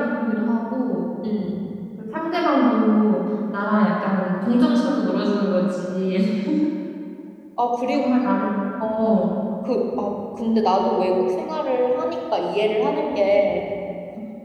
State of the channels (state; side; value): identical; both; correlation 1.00